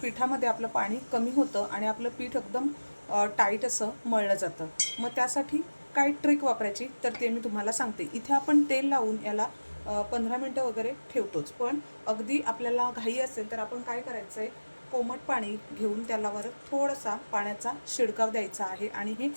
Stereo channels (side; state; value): both; inverted; correlation -1.00